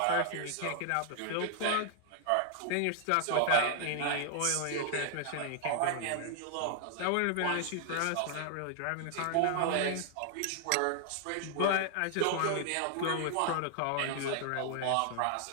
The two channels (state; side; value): different; both; correlation 0.00